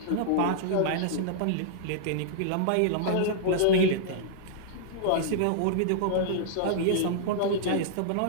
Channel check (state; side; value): different; both; correlation -0.01